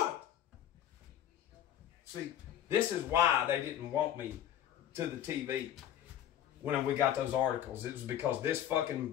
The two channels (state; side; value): quieter; right; 11.0 dB